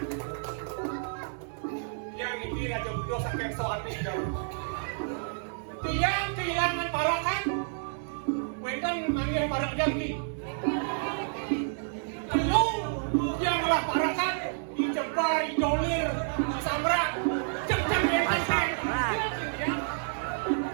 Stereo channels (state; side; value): silent; left; digital silence